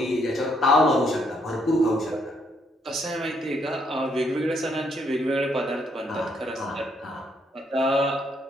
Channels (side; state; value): both; normal; correlation 0.72